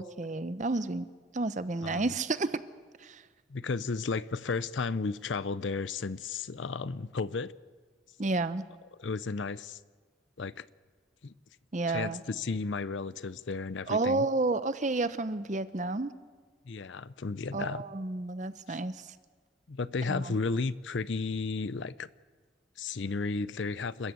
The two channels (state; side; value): normal; both; correlation 0.38